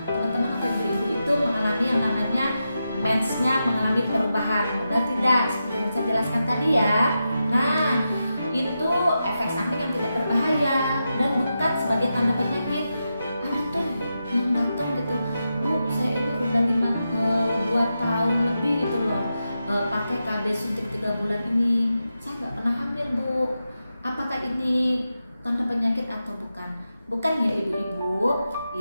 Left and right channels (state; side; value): inverted; both; correlation -0.89